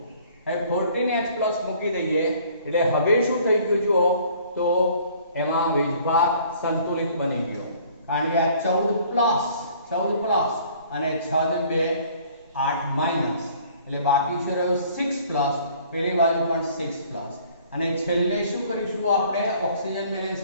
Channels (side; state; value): both; inverted; correlation -0.55